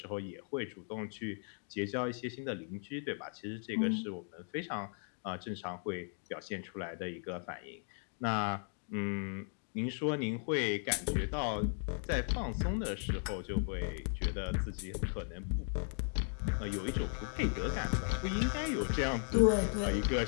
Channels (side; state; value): right; silent; 53 dB below the other